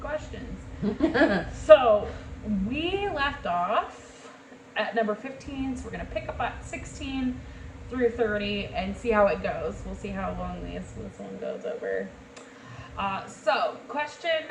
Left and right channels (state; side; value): identical; both; correlation 1.00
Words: questions. So we left off at number 15, so we're gonna pick up at 16 through 30 and see how it goes. We'll see how long this one goes over. So question